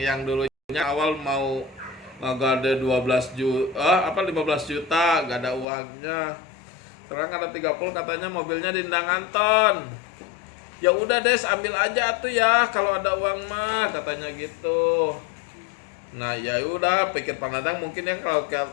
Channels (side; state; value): right; drops out; at 5.7 s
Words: dulunya awal mau ngagade 15 juta, gak ada uangnya. Sekarang ada 30, katanya mobilnya di Indang Anton. Ya udah Des, ambil aja tuh ya kalau ada uang mah, katanya gitu. Nah, ya udah, pikir Panandang mungkin yang